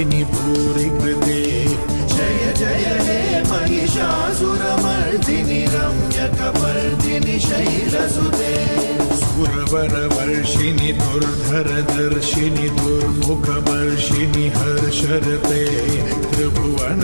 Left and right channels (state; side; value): inverted; both; correlation -1.00